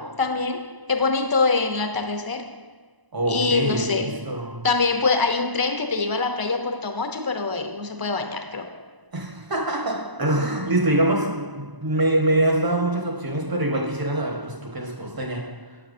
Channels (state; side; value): late; left; 1.0 ms